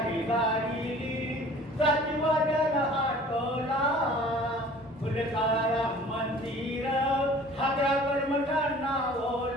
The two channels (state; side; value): normal; both; correlation 0.48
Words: गाडीली जातीवाद्याला आटोला. फुलकारा मंदिर हादरा कर्मठांना